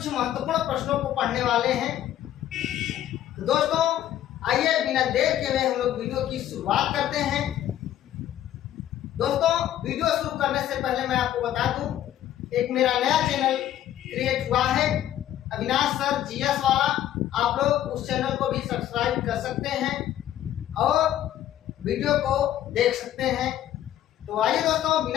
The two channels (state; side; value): quieter; right; 12.0 dB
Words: महत्वपूर्ण प्रश्नों को पढ़ने वाले हैं। तो दोस्तों आइए बिना देर के हुए हम लोग वीडियो की शुरुआत करते हैं। दोस्तों वीडियो शुरू करने से पहले मैं आपको बता दूं, एक मेरा नया चैनल क्रिएट हुआ है, अविनाश सर जीएस वाला। आप लोग उस चैनल को भी सब्सक्राइब कर सकते हैं और वीडियो को देख सकते हैं। तो आइए दोस्तों